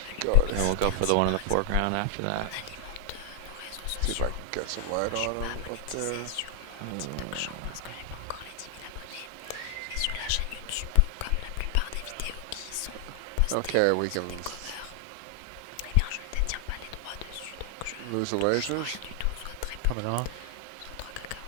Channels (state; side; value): different; both; correlation 0.00